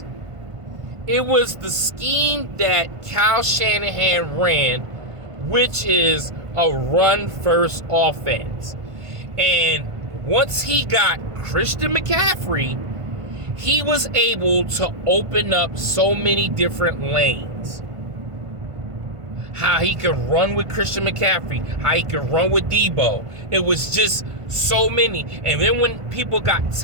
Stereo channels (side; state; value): left; late; 1.5 ms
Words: It was the scheme that Kyle Shanahan ran, which is a run-first offense. And once he got Christian McCaffrey, he was able to open up so many different lanes. How he could run with Christian McCaffrey, how he could run with Debo. It was just so many. And then when people got